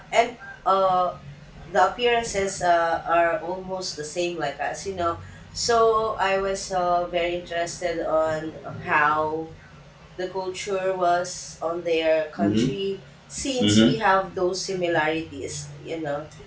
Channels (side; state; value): both; identical; correlation 1.00